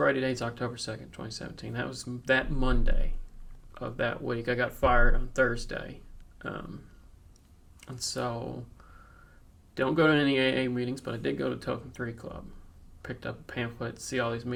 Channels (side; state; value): both; identical; correlation 1.00